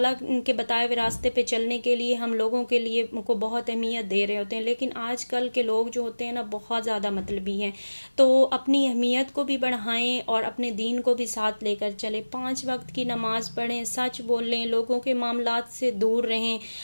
के बताए हुए रास्ते पे चलने के लिए हम लोगों के लिए को बहुत अहमियत दे रहे होते हैं। लेकिन आजकल के लोग जो होते हैं ना, बहुत ज़्यादा मतलबी हैं। तो अपनी अहमियत को भी बढ़ाएं और अपने दीन को भी साथ लेकर चलें। 5 वक्त की नमाज पढ़ें, सच बोलें, लोगों के मामलात से दूर रहें,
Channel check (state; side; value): inverted; both; correlation -1.00